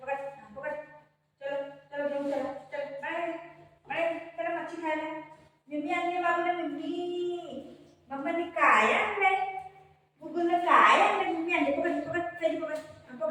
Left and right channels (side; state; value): both; identical; correlation 1.00